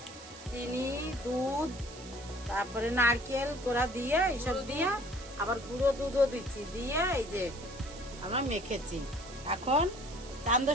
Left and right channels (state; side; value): noise; right; hiss, 16 dB below the sound